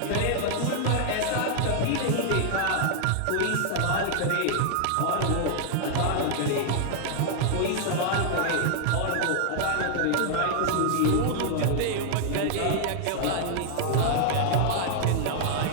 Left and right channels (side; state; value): both; different; correlation -0.01